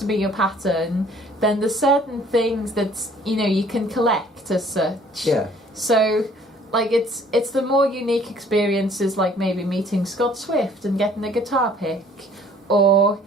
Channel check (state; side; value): normal; both; correlation 0.56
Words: be your pattern, then there's certain things that, you know, you can collect as such. Yeah. So like it's the more unique experiences, like maybe meeting Scott Swift and getting a guitar pick, or